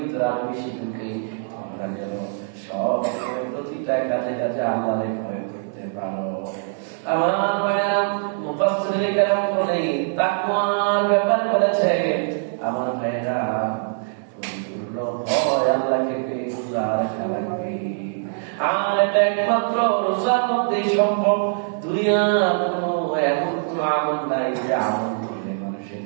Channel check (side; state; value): left; silent; digital silence